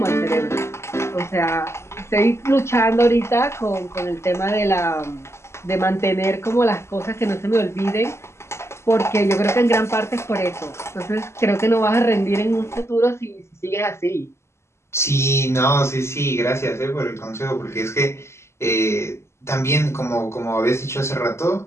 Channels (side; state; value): right; late; 0.13 ms